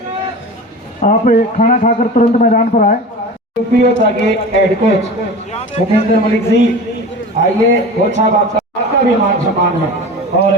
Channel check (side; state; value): both; normal; correlation 0.33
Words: आप खाना खाकर तुरंत मैदान पर आए। यूपीओ के हेड कोच भूपेंद्र मलिक जी, आइए कोच साहब, आपका भी मान सम्मान है। और